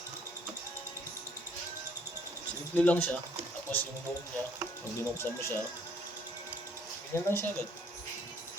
Simple lang siya. Tapos yung loob niya, pag binuksan mo siya, ganyan lang siya agad.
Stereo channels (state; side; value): normal; both; correlation 0.63